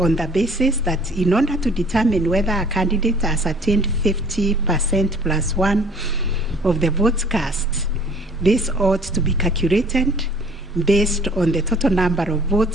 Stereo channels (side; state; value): both; normal; correlation 0.53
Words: the basis that in order to determine whether a candidate has attained 50%+1 of the votes cast, this ought to be calculated based on the total number of